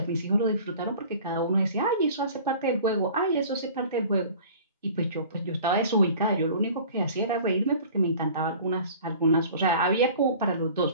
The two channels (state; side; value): inverted; both; correlation -0.45